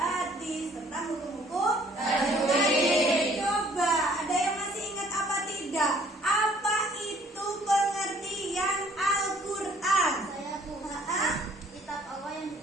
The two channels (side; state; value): both; normal; correlation 0.59